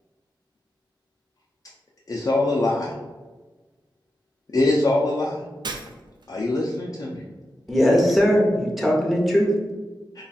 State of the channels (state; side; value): normal; both; correlation 0.89